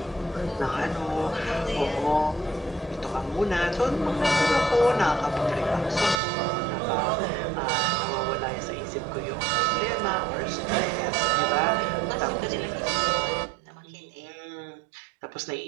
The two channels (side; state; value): left; drops out; at 6.2 s